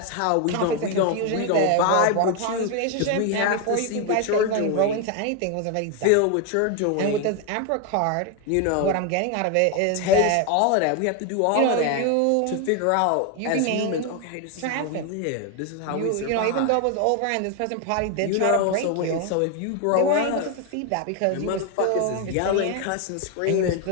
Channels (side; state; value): both; different; correlation 0.01